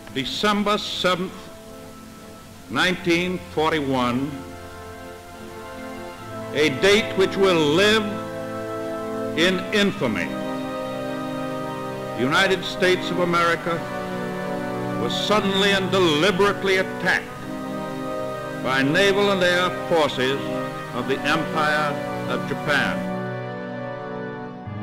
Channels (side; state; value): both; identical; correlation 1.00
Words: December 7th, 1941, a date which will live in infamy. The United States of America was suddenly and deliberately attacked by naval and air forces of the Empire of Japan.